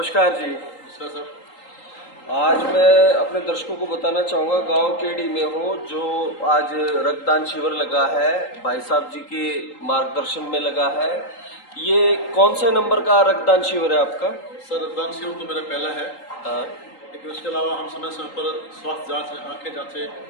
जी। सर आज मैं अपने दर्शकों को बताना चाहूँगा, गांव केडी में हूँ, जो आज रक्तदान शिविर लगा है, भाई साहब जी के मार्गदर्शन में लगा है। ये कौन से नंबर का रक्तदान शिविर है आपका? सर रक्तदान शिविर तो मेरा पहला है, हाँ, लेकिन उसके अलावा हम समय समय पर स्वास्थ्य जांच, आंखें जांचें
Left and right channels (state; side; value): late; right; 3.8 ms